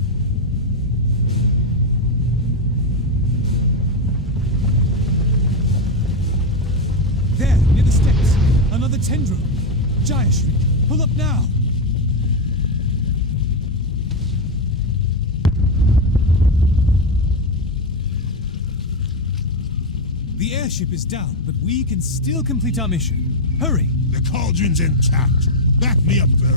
There, near the steps. Another tendril. Jaya Street. Pull up now. The airship is down, but we can still complete our mission. Hurry! The cauldron's intact. Back me up,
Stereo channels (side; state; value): both; normal; correlation 0.06